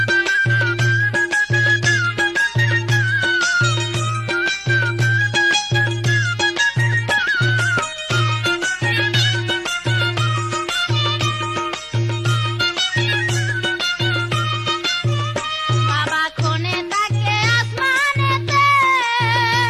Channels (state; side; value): identical; both; correlation 1.00